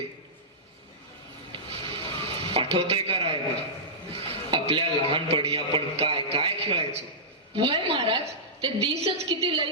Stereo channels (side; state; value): both; normal; correlation -0.15